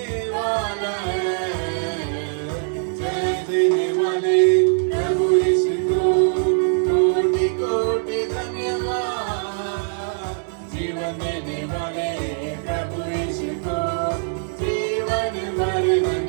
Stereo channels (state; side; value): silent; left; 64 dB below the other